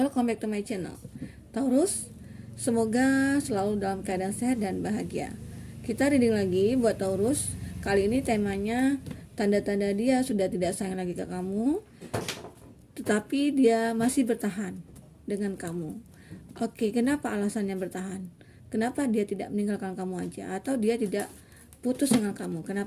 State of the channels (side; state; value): both; identical; correlation 1.00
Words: back to my channel. Taurus, semoga selalu dalam keadaan sehat dan bahagia. Kita reading lagi buat Taurus. Kali ini temanya tanda-tanda dia sudah tidak sayang lagi ke kamu, tetapi dia masih bertahan dengan kamu. Oke, kenapa alasannya bertahan? Kenapa dia tidak meninggalkan kamu aja, atau dia tidak putus dengan kamu?